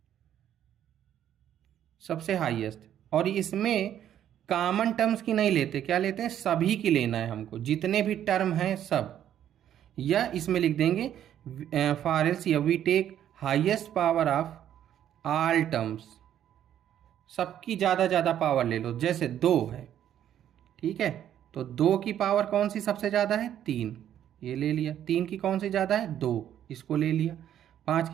सबसे हाईएस्ट, और इसमें कॉमन टर्म्स की नहीं लेते, क्या लेते हैं, सभी की लेना है हमको, जितने भी टर्म हैं सब। या इसमें लिख देंगे for LCM we take highest power of all terms, सबकी ज़्यादा पावर ले लो। जैसे 2 है, ठीक है, तो 2 की पावर कौन सी सबसे ज़्यादा है, 3, ये ले लिया। 3 की कौन सी ज़्यादा है, 2, इसको ले लिया। 5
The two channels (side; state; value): left; quieter; 10.6 dB